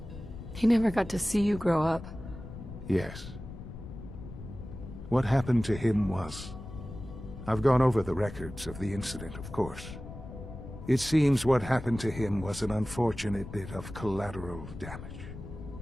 He never got to see you grow up. Yes. What happened to him was... I've gone over the records of the incident, of course. It seems what happened to him was an unfortunate bit of collateral damage.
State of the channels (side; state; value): left; noise; rumble, 12 dB below the sound